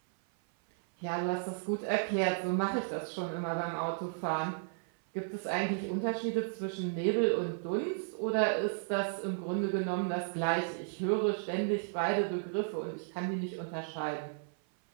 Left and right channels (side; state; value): left; silent; 55 dB below the other